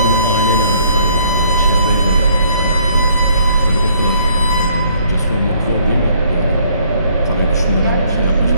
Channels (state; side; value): inverted; both; correlation -0.64